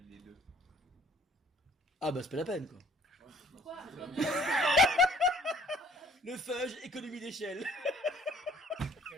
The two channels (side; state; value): both; normal; correlation 0.56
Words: les deux? Ah bah c'est pas la peine quoi. Pourquoi? Le fudge, économie d'échelle.